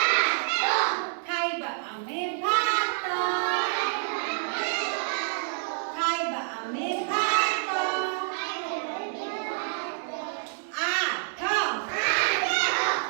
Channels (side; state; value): left; silent; digital silence